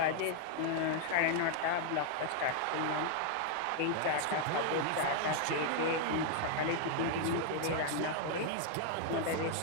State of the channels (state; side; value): different; both; correlation 0.00